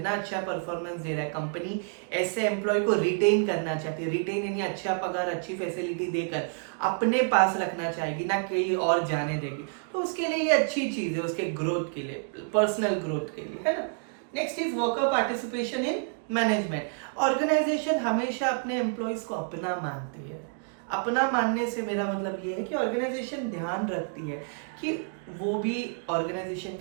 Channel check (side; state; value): left; silent; 59 dB below the other